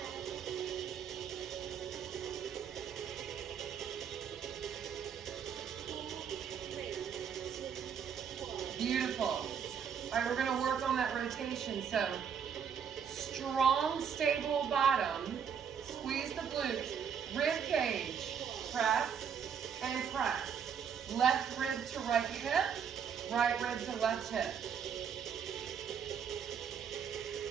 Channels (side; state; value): left; quieter; 7.5 dB